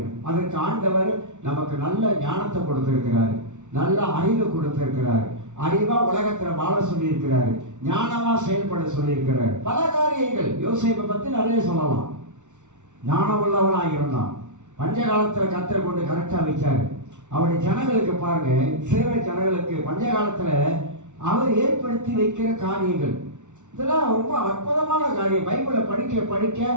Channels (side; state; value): left; late; 0.85 ms